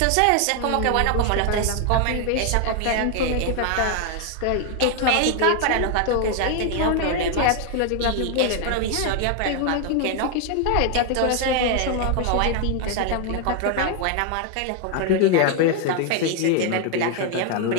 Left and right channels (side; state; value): both; different; correlation 0.00